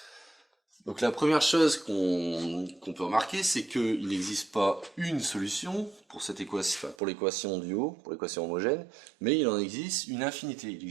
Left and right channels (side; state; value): left; drops out; at 7.0 s